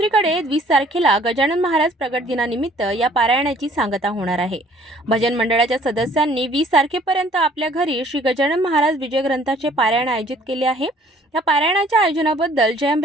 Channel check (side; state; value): both; normal; correlation 0.57